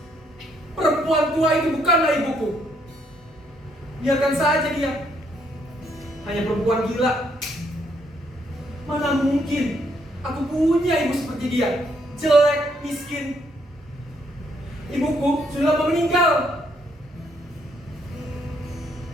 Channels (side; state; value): both; normal; correlation 0.72